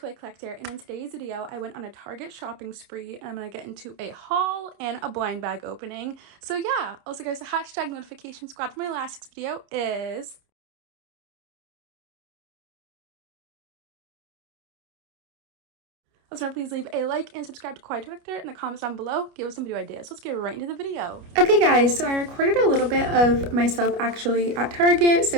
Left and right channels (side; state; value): left; late; 29 ms